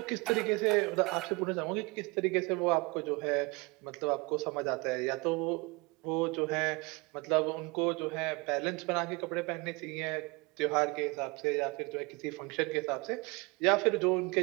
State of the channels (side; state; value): left; quieter; 26.7 dB